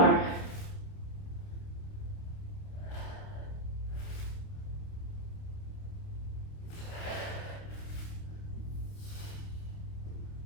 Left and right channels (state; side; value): late; right; 29 ms